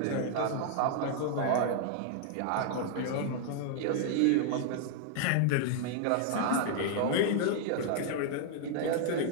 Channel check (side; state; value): both; different; correlation 0.00